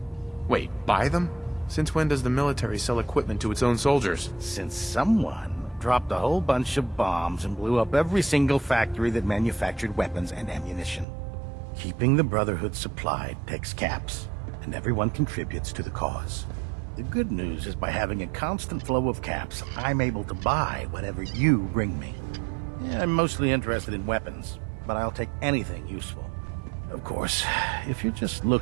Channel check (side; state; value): left; drops out; at 11.1 s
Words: Wait, buy them? Since when does the military sell equipment to its own soldiers? Since someone dropped a whole bunch of bombs and blew up every single factory that manufactured weapons and ammunition. Keeping the Brotherhood supplied takes caps, and everyone contributes to the cause. The good news is by having a constant flow of caps, I'm able to buy whatever you bring me. Yeah, I'm mostly interested in weapons, but I'll take anything useful. Of course, if you're just